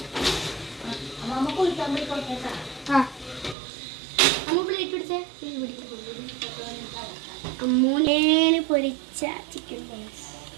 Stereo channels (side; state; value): left; drops out; at 3.6 s